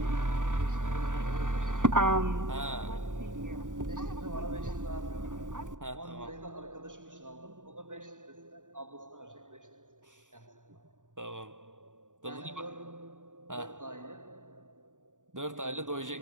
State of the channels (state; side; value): late; left; 0.87 ms